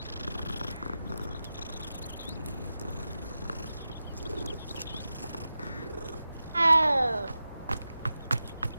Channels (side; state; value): both; inverted; correlation -0.92